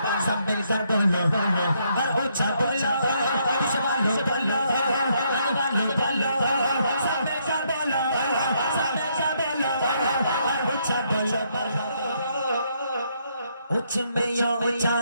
सब मिलकर बोलो और उच्च बोलो वालो बोलो वालो बोलो सब मिलकर बोलो सब मिलकर बोलो और उच्च बोलो उच्च में यो उच्चा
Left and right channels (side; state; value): both; inverted; correlation -0.73